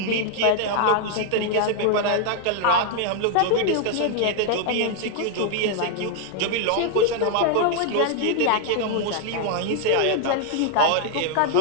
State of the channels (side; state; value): both; different; correlation 0.00